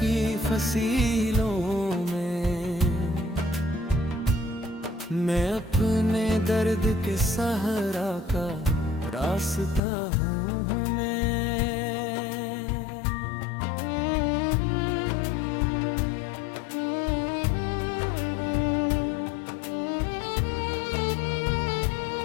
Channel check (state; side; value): drops out; right; at 9.8 s